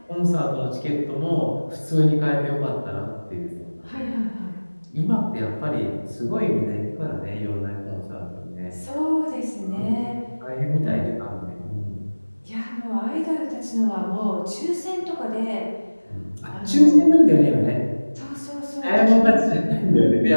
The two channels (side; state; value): both; inverted; correlation -1.00